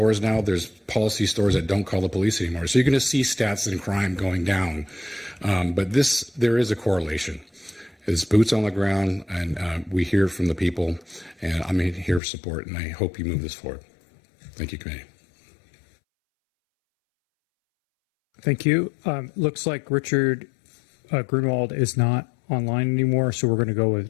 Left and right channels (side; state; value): right; drops out; at 12.2 s